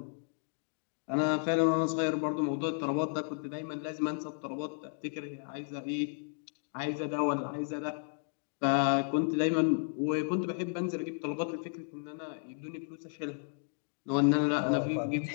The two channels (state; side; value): silent; right; digital silence